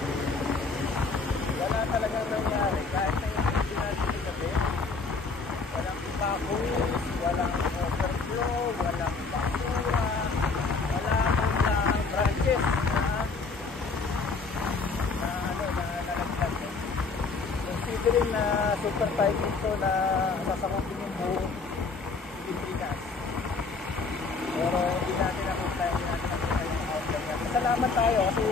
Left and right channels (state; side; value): quieter; right; 4.3 dB